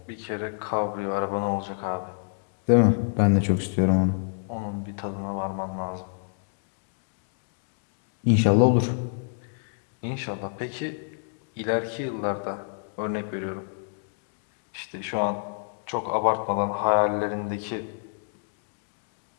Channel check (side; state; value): right; silent; digital silence